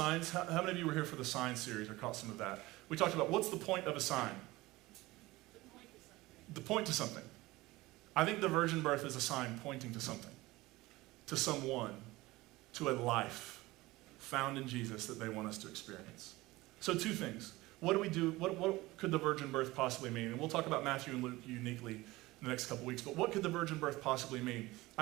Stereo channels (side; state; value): left; quieter; 19.6 dB